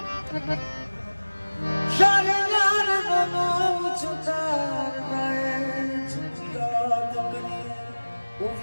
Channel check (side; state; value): both; inverted; correlation -1.00